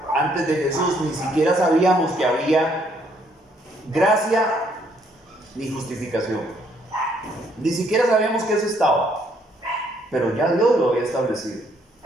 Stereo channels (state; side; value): normal; both; correlation 0.68